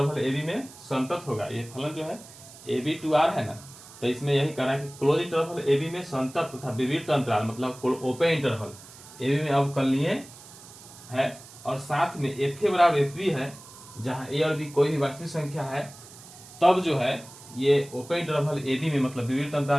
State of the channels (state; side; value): noise; right; hiss, 19 dB below the sound